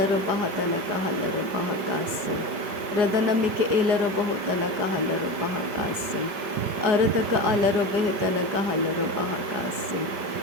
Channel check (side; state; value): left; late; 5.1 ms